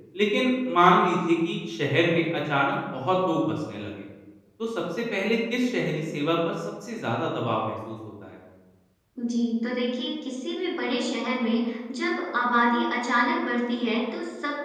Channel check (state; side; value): identical; both; correlation 1.00